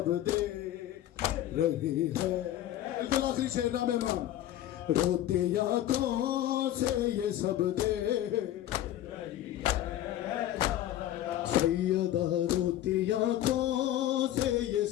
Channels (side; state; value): right; quieter; 13.0 dB